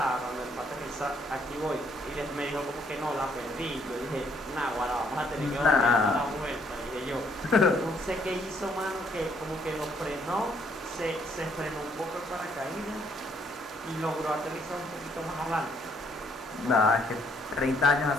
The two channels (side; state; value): both; normal; correlation 0.68